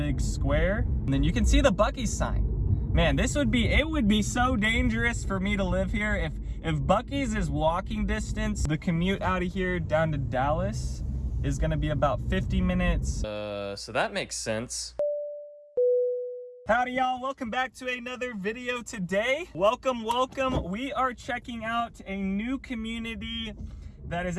square. And then you can see the Buc-ee's sign. Man, it would be so dangerous for me to live here if Buc-ee's is walking distance. The commute out of here down to Dallas is gonna be about 50 minutes. So that makes sense. Howdy y'all, welcome back to another video today. Welcome. We are checking out a new community that is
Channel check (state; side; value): identical; both; correlation 1.00